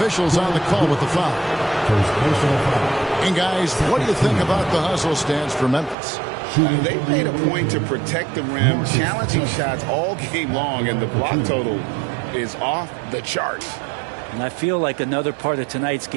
on the call with the foul. And guys, what do you think about the hustle stance for Memphis? They made a point to protect the rim, challenging shots all game long, and the block total is off the charts. And I feel like another part of tonight's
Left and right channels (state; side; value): drops out; left; at 6.0 s